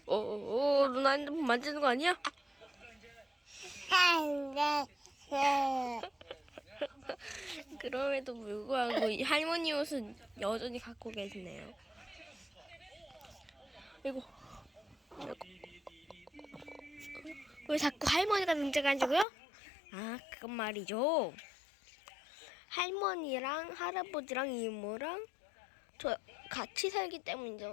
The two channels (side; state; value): right; drops out; at 19.2 s